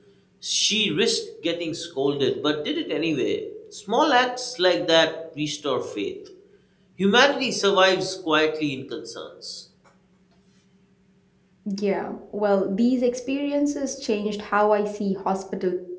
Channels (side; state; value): both; identical; correlation 1.00